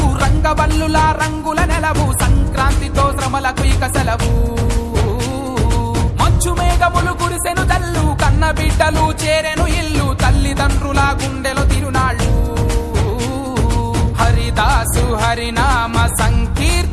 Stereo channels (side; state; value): both; identical; correlation 1.00